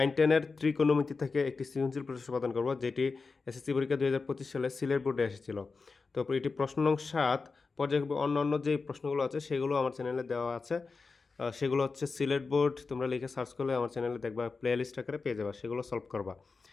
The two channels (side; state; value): right; quieter; 4.4 dB